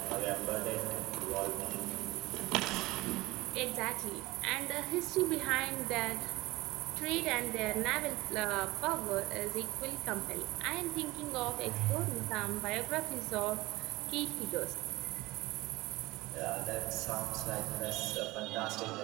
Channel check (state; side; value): quieter; left; 20.0 dB